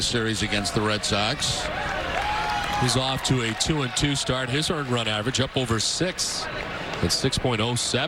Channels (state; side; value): identical; both; correlation 1.00